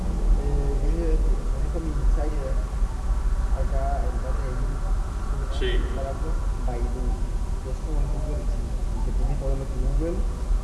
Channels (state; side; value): identical; both; correlation 1.00